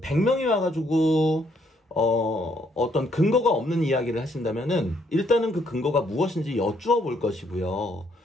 100명이 와가지고 어떤 근거가 없는 이야기를 하신다면은 일단은 그 근거가 무엇인지 여쭈어 볼 것이고요.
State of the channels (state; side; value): normal; both; correlation 0.70